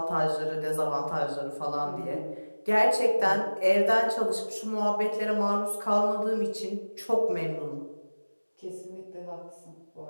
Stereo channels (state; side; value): inverted; both; correlation -1.00